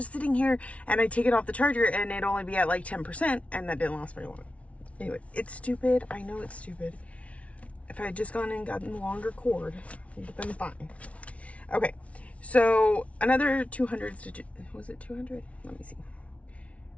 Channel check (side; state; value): right; late; 0.064 ms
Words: sitting here. And I take it off the charger, and it'd only be at like 10%, and that didn't last very long. Anyway, it's stupid. I know it's stupid. If I had just gone and gotten the longer cord, it would have been fine. Okay, so another 200 stitches. Was it 200? Let me see.